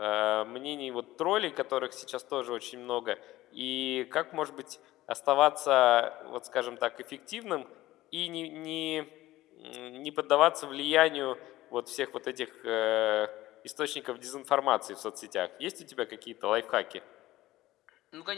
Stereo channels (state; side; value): quieter; right; 16.5 dB